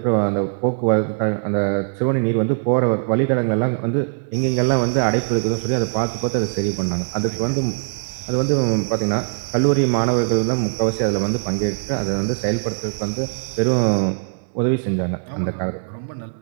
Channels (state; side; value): silent; left; digital silence